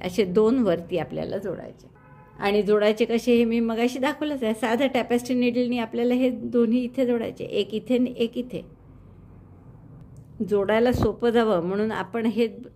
असे 2 वरती आपल्याला जोडायचे. आणि जोडायचे कसे हे मी मगाशी दाखवलंच आहे. साधं टॅपेस्ट्री नीडलनी आपल्याला हे दोन्ही इथे जोडायचे, एक इथे आणि एक इथे. जोडायला सोपं जावं म्हणून आपण हे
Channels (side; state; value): both; identical; correlation 1.00